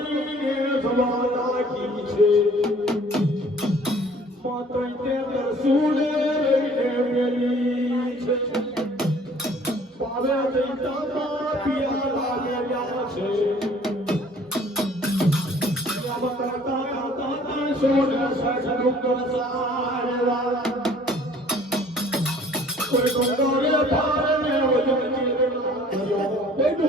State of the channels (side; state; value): both; normal; correlation 0.54